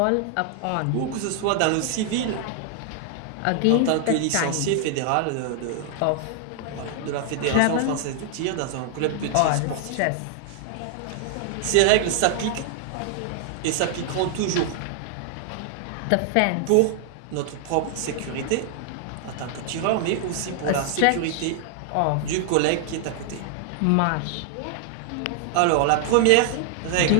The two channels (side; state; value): both; different; correlation 0.00